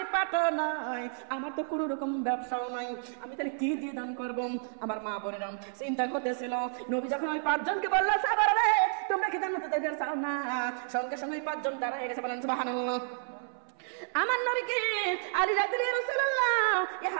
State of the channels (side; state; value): left; silent; 57 dB below the other